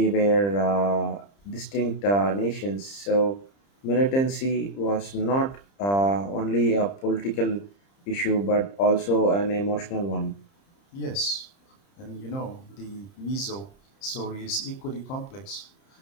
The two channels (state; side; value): late; right; 30 ms